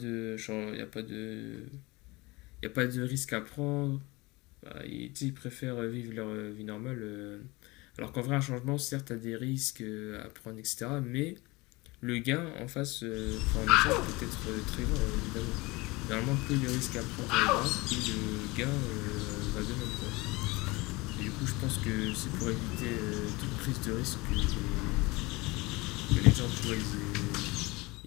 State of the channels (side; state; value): right; quieter; 23.4 dB